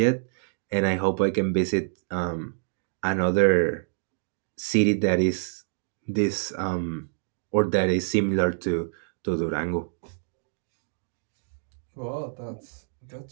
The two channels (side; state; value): left; silent; digital silence